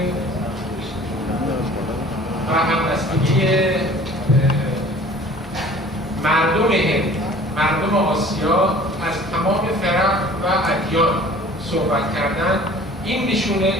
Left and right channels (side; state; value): both; normal; correlation 0.48